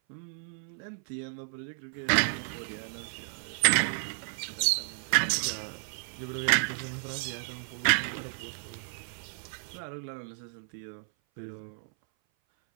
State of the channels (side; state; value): left; silent; 56 dB below the other